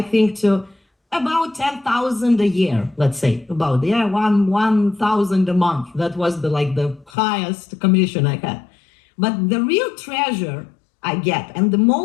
to about 10,000 a year, let's say, about 1,000 a month. That was the highest commission I had. But the real treasure I get, and the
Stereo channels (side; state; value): right; drops out; at 7.1 s